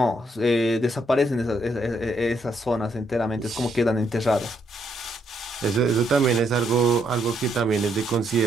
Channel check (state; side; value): normal; both; correlation 0.74